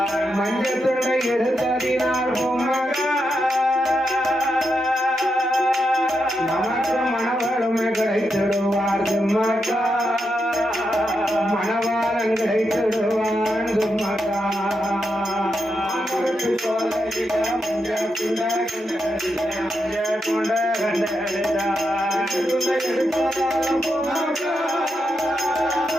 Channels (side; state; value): both; normal; correlation 0.85